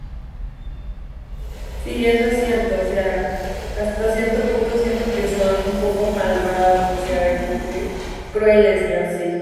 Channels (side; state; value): both; identical; correlation 1.00